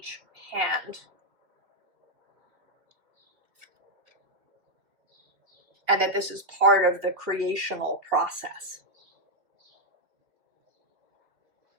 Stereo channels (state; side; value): late; left; 2.8 ms